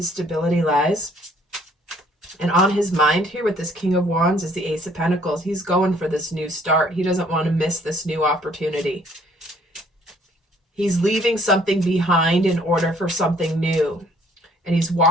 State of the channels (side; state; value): both; normal; correlation 0.61